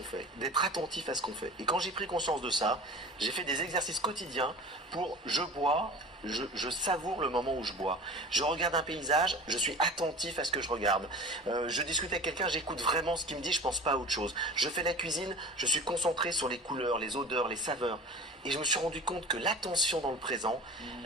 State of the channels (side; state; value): both; normal; correlation 0.38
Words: fait, d'être attentif à ce qu'on fait. Et quand j'ai pris conscience de ça, j'ai fait des exercices quotidiens pour je bois, je savoure le moment où je bois. Je regarde un paysage, je suis attentif à ce que je regarde. Je discute avec quelqu'un, j'écoute vraiment ce qu'il me dit, je pense pas à autre chose. Je fais la cuisine, je suis concentré sur les couleurs, les odeurs, les saveurs. Et je me suis rendu compte que l'attention dans le présent,